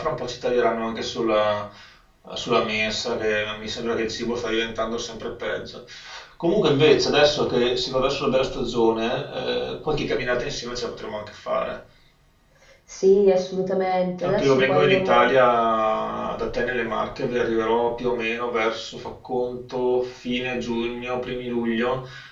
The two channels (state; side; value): identical; both; correlation 1.00